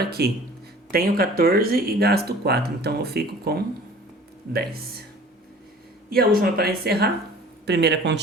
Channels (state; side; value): normal; both; correlation 0.46